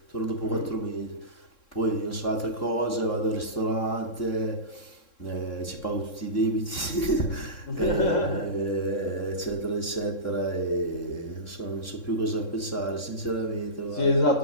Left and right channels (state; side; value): late; right; 3.7 ms